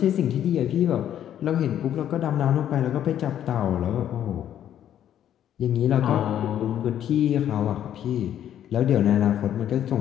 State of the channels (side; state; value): right; quieter; 10.6 dB